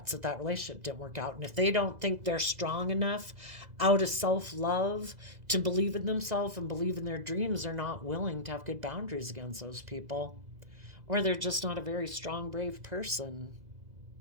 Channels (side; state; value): left; late; 2.0 ms